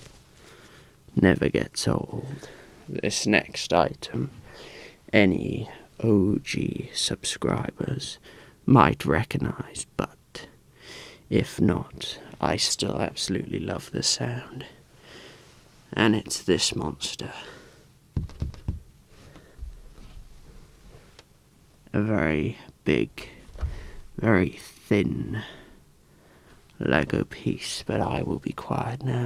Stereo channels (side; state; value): both; identical; correlation 1.00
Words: Never gets old. This next item, any OG subscribers might recognize, but if not, I still absolutely love the sound. And it's this monster. A very big, very thin Lego piece, but I will be quiet